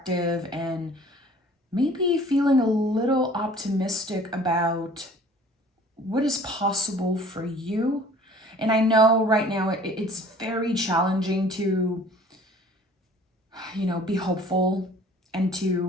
and maybe feeling a little optimistic about what is possible for you. And I know right now it's very challenging to, be hopeful and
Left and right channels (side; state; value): both; normal; correlation 0.50